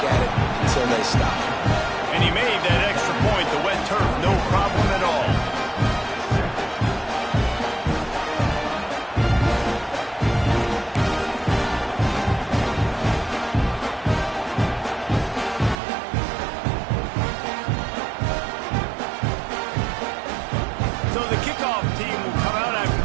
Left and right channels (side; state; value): left; drops out; at 15.8 s